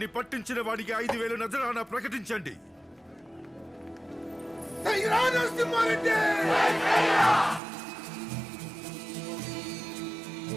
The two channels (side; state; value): left; drops out; at 7.6 s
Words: పట్టించిన వాడికి 5,000 నజరానా ప్రకటించండి.